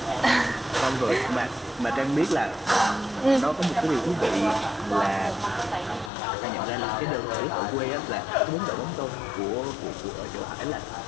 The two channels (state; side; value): drops out; right; at 6.1 s